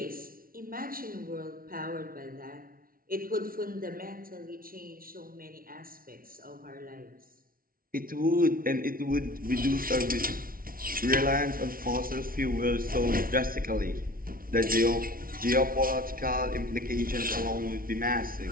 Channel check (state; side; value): late; left; 0.42 ms